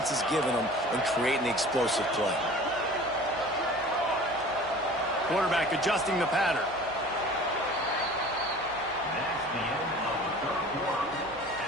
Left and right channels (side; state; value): right; noise; hum, 22 dB below the sound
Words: is giving them and creating the explosive play. Quarterback adjusting the pattern.